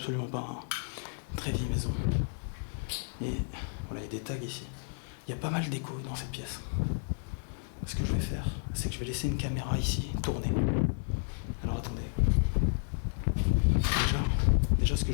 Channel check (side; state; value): right; silent; digital silence